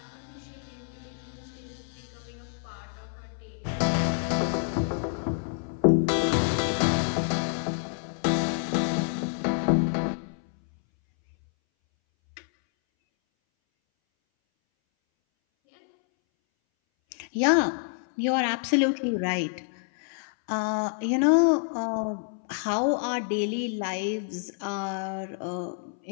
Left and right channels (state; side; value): silent; right; 60 dB below the other